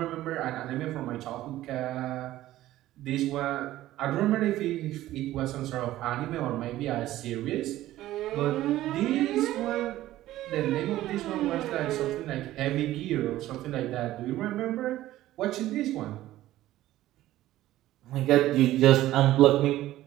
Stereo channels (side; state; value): left; quieter; 14.9 dB